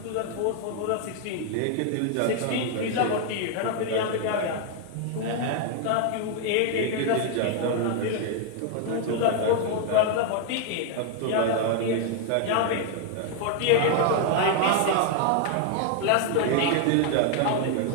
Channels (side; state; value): both; different; correlation 0.00